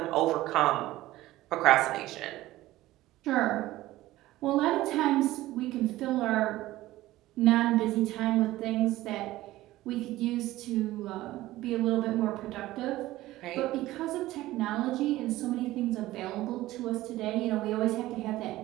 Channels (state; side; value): quieter; left; 16.5 dB